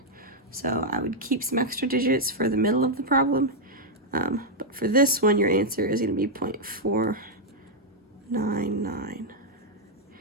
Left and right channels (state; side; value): normal; both; correlation -0.02